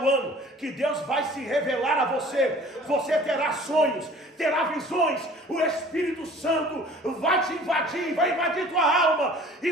ano que Deus vai se revelar a você. Você terá sonhos, terá visões. O Espírito Santo vai te invadir, vai invadir tua alma e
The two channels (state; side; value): normal; both; correlation 0.48